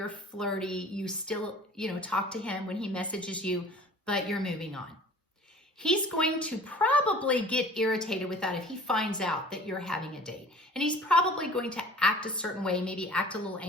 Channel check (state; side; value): normal; both; correlation 0.46